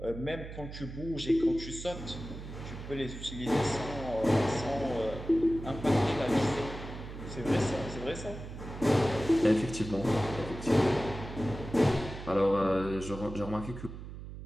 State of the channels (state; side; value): noise; right; hum, 11 dB below the sound